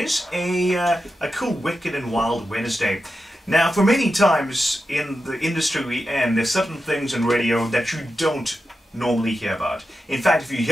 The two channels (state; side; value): normal; both; correlation 0.90